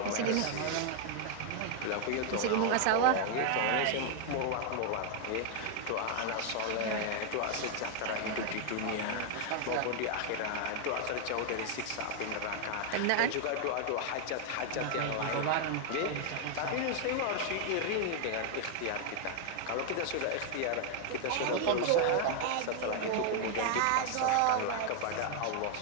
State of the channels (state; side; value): different; both; correlation 0.00